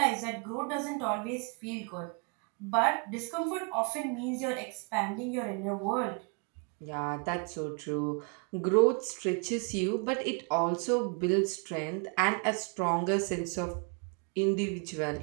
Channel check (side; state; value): left; quieter; 37.1 dB